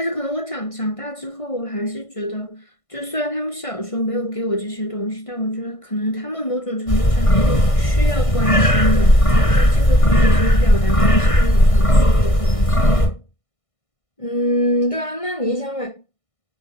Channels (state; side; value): late; right; 1.6 ms